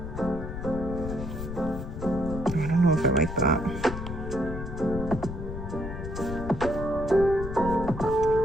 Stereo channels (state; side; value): noise; left; rumble, 7 dB below the sound